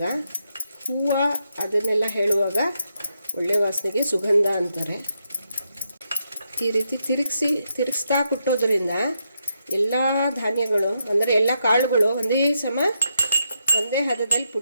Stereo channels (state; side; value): inverted; both; correlation -0.81